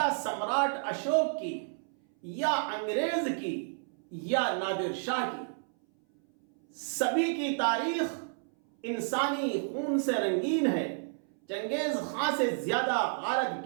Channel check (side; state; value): left; silent; 57 dB below the other